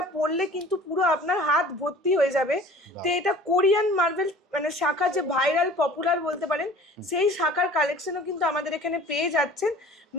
পরলে কিন্তু পুরো আপনার হাত ভর্তি হয়ে যাবে। তো এটা কোরিয়ান মার্বেল মানে শাখা যে ভাইরাল পপুলার বলতে পারেন সেই শাখার কালেকশনও কিন্তু আমাদের এখানে পেয়ে যাচ্ছেন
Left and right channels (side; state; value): both; normal; correlation 0.46